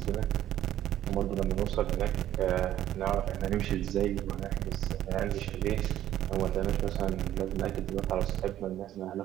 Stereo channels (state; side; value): quieter; left; 12.3 dB